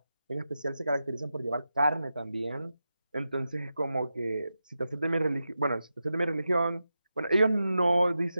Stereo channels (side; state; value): both; inverted; correlation -0.90